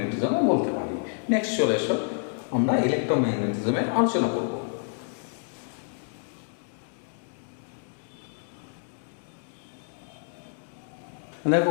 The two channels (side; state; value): right; silent; 59 dB below the other